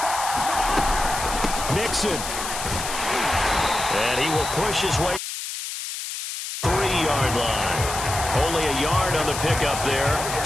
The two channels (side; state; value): left; noise; hiss, 6 dB below the sound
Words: Mixon. And he will push his way 3-yard line. Only a yard on the pickup there.